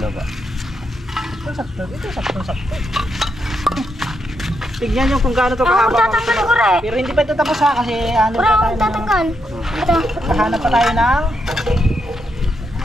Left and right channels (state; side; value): normal; both; correlation 0.81